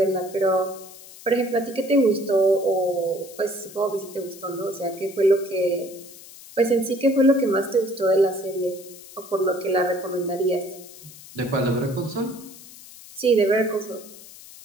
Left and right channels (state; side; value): noise; left; hiss, 18 dB below the sound